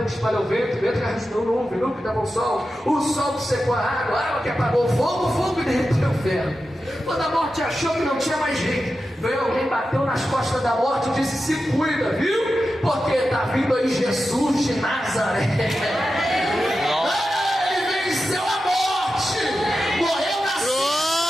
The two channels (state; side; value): normal; both; correlation 0.91